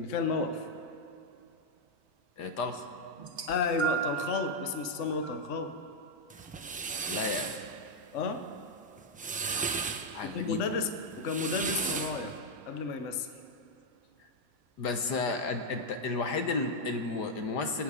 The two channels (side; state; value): both; normal; correlation -0.01